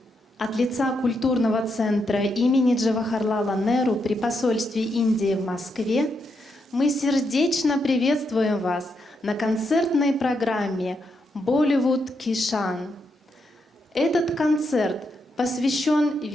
От лица культурного центра имени Джавахарлала Неру при посольстве Индии в Москве мы сердечно приветствуем вас на концертной программе «Болливуд Кишан». Этот концерт посвящен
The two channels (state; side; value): normal; both; correlation 0.81